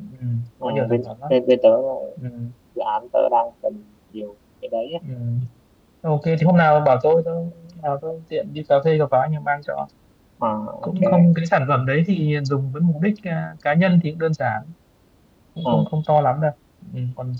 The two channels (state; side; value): identical; both; correlation 1.00